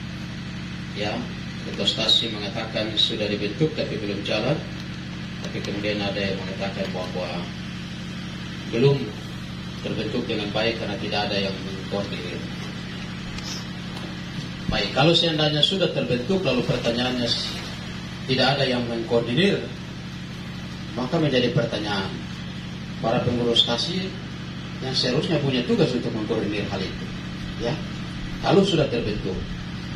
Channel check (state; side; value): identical; both; correlation 1.00